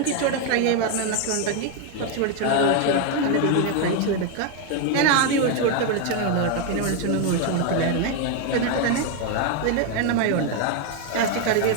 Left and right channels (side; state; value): both; different; correlation 0.01